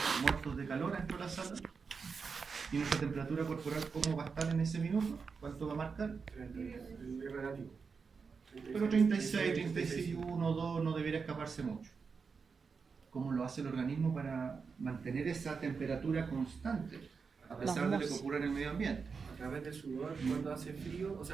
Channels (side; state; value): left; quieter; 5.3 dB